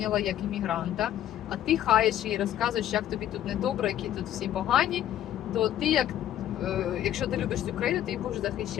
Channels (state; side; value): quieter; right; 11.8 dB